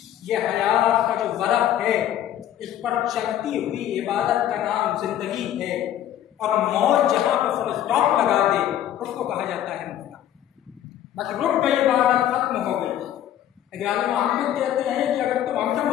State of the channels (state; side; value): quieter; right; 11.4 dB